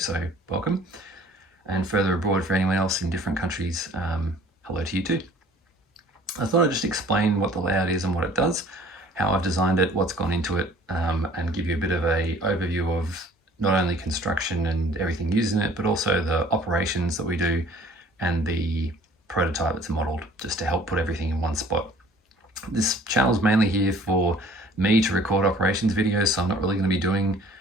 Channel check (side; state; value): both; normal; correlation 0.52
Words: welcome. And further abroad for anyone else in different countries, hello to you too. I thought I'd just explain what the layout is and what it does, how I've designed it, what's gone into it, and give you a bit of an overview of not only construction and everything used in it, but also the operations that we do and the prototype that's modeled, just to help put everything in one spot. This channel's mainly here for me to record operations videos, so I'm not really going to be doing